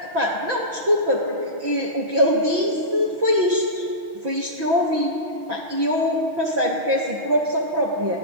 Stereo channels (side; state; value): left; late; 6.1 ms